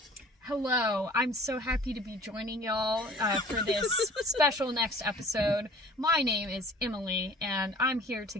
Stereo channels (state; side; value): normal; both; correlation 0.48